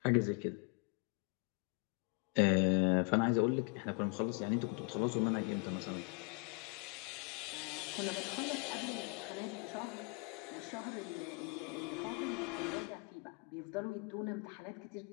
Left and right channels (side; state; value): right; quieter; 33.8 dB